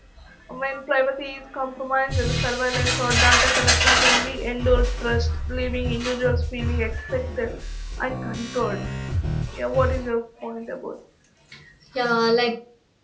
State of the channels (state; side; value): identical; both; correlation 1.00